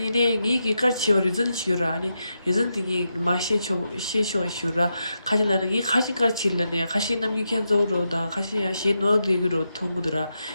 네, 이기 까치어 리전 치유라. 아니, 리전 딩이 마셰초 셰쇼 슈라. 가시나는 이 가시까 칠라네. 가시 남기 캔조로다. 가시야 셰 노드기로 통구더라.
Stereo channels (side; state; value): both; inverted; correlation -0.86